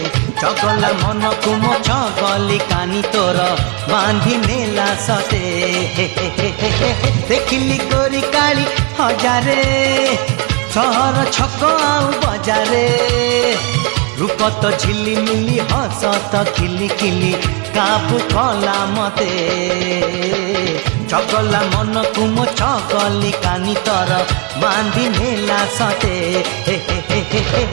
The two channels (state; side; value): quieter; left; 30.9 dB